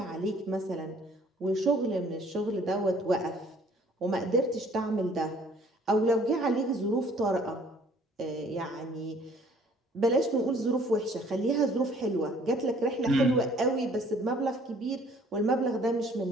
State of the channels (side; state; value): both; normal; correlation 0.57